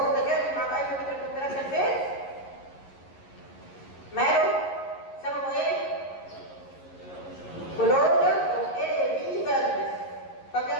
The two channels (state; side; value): late; right; 11 ms